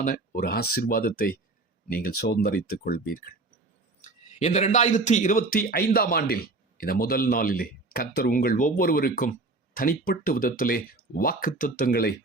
ஒரு ஆசீர்வாதத்தை நீங்கள் சுதந்தரித்துக் கொள்வீர்கள். இந்த 2025 ஆண்டில் இந்த முதல் நாளிலே கர்த்தர் உங்கள் ஒவ்வொருவருக்கும் தனிப்பட்ட விதத்திலே வாக்குத்தத்தங்களை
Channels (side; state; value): left; quieter; 3.3 dB